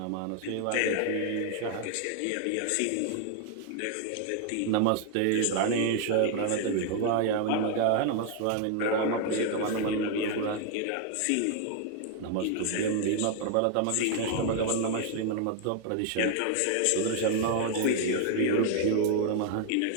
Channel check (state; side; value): different; both; correlation 0.00